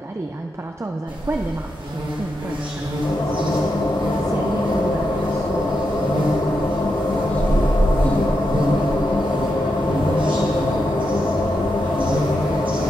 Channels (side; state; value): both; normal; correlation 0.85